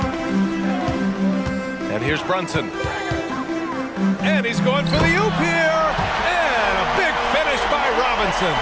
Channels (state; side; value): identical; both; correlation 1.00